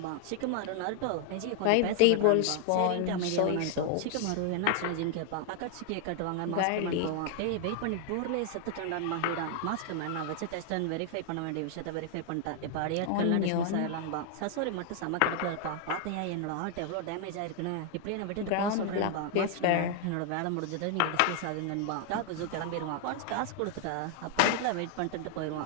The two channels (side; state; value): both; different; correlation 0.00